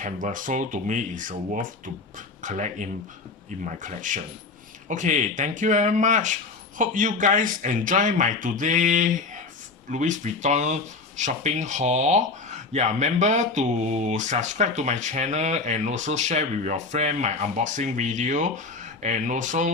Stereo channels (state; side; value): quieter; right; 4.0 dB